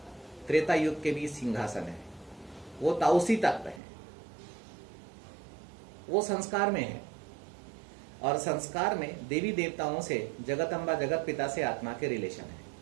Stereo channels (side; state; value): left; drops out; at 3.8 s